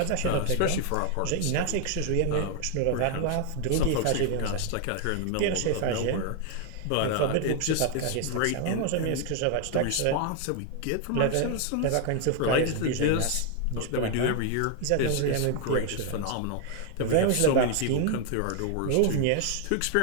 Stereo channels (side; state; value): both; different; correlation 0.00